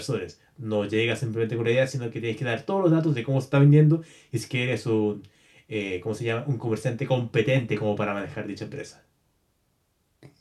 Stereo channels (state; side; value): identical; both; correlation 1.00